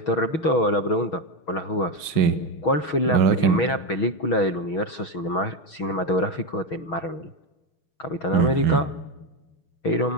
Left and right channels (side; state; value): right; late; 6.4 ms